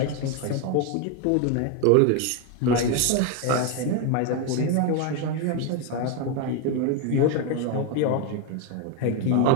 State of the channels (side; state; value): both; different; correlation 0.01